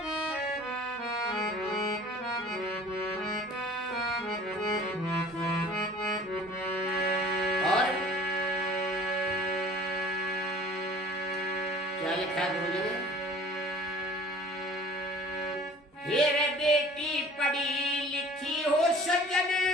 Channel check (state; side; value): normal; both; correlation 0.47